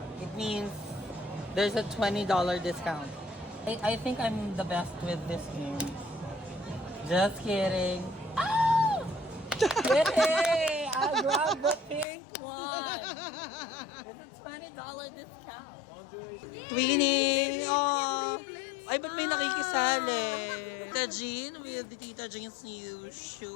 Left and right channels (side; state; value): right; drops out; at 12.1 s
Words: it means there's a $20 discount. I think I'm the best with this game. Just kidding. Ah! Yay! I grabbed the pink one. It's a $20 discount. Twinning! Oh! Ay, ba't may nakikisali? Tita Jean with Tita Jean's new